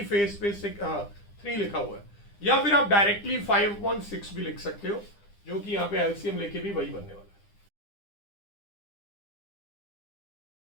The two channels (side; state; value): right; late; 9.9 ms